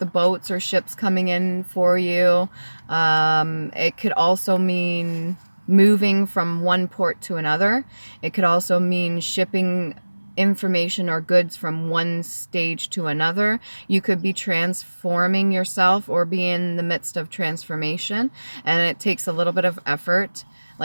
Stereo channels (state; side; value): inverted; both; correlation -1.00